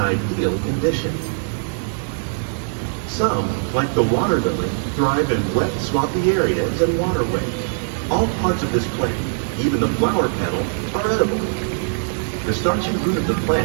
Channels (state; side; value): silent; left; 59 dB below the other